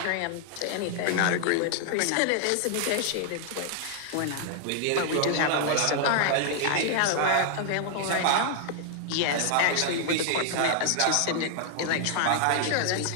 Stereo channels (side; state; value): both; different; correlation 0.00